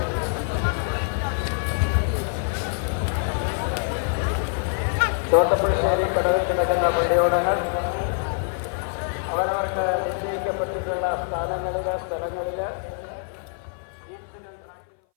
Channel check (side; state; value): right; silent; 59 dB below the other